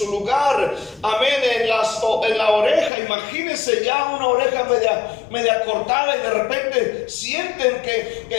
lugar, amén, en la oreja. Imagínense ya una oreja media cortada, y de repente sienten que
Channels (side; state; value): right; drops out; at 2.9 s